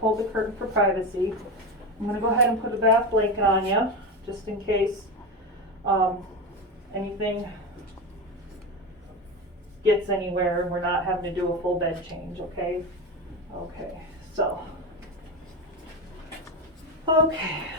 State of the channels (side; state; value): both; normal; correlation 0.19